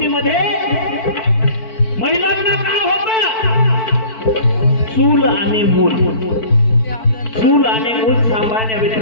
महिलांना काय होतं चूल आणि मूल चूल आणि मूल सांभाळण्या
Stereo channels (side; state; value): right; late; 4.5 ms